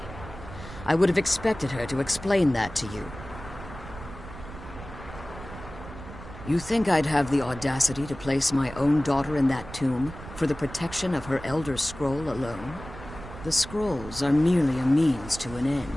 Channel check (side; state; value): right; noise; rumble, 14 dB below the sound